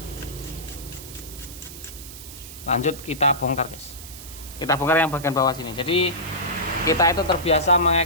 Lanjut kita bongkar guys. Kita bongkar yang bagian bawah sini. Jadi kita itu terbiasa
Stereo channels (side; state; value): right; noise; hiss, 14 dB below the sound